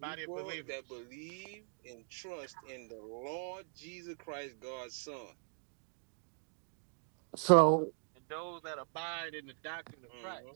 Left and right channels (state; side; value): silent; left; 51 dB below the other